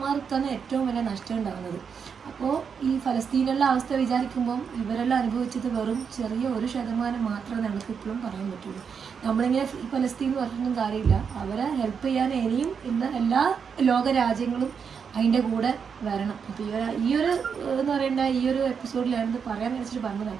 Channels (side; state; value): left; quieter; 6.5 dB